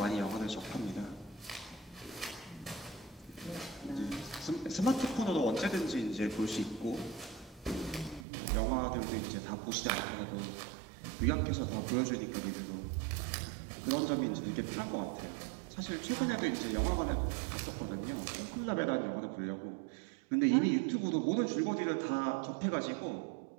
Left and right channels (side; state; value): left; drops out; at 8.2 s